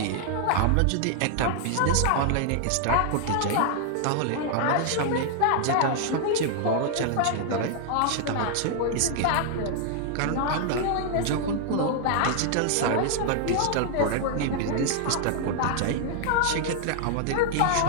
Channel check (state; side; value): different; both; correlation 0.00